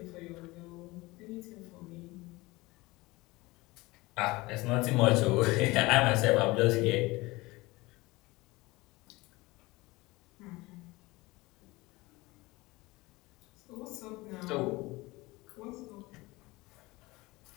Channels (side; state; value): right; quieter; 21.7 dB